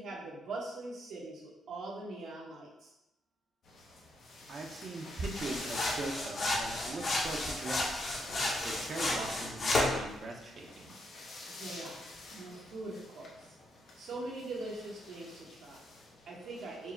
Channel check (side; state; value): both; normal; correlation 0.78